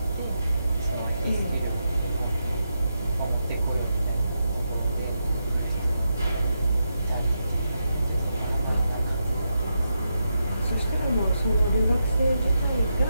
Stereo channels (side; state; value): both; inverted; correlation -0.85